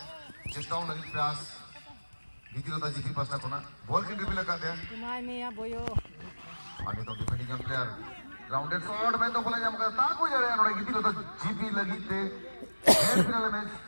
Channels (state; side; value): inverted; both; correlation -1.00